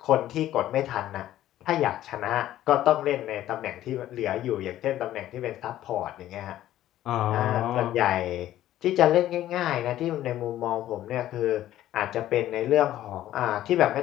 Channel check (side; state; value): right; quieter; 13.3 dB